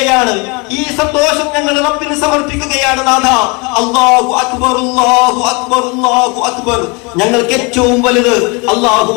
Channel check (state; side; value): quieter; right; 29.5 dB